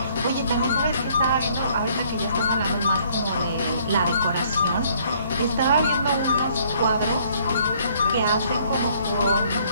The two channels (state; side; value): inverted; both; correlation -0.63